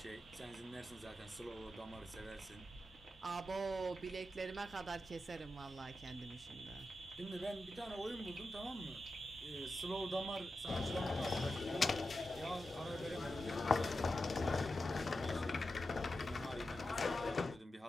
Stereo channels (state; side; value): normal; both; correlation 0.90